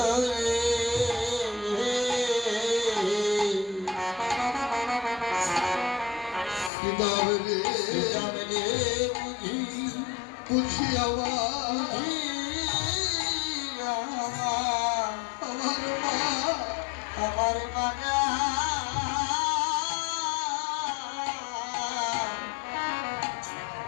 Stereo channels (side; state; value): right; drops out; at 6.7 s